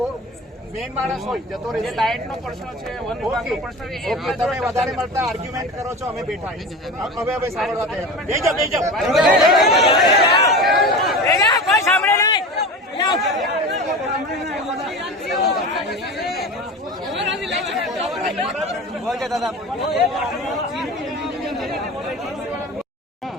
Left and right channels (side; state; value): both; normal; correlation 0.31